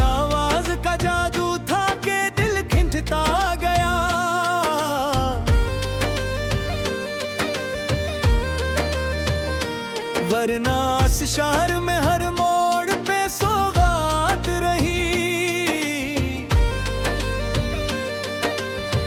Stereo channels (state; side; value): identical; both; correlation 1.00